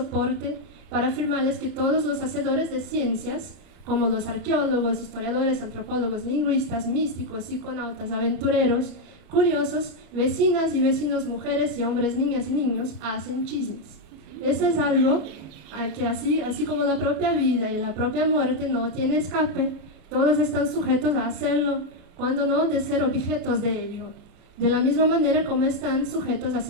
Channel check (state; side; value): late; left; 33 ms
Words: para afirmarles que todos los hacedores de ciencias, como los arqueólogos, historiadores, antropólogos, lingüistas, místicos, psiconautas, aventureros, curiosos, vecinas y vecinos, mujeres y hombres, niñas y niños, hacen chismes. Eso es algo que así como la propia vida y la propia muerte no tiene escape, todos están sujetos a hacerlo, cuando no de ser objetos de ello, de la misma manera como están sujetos a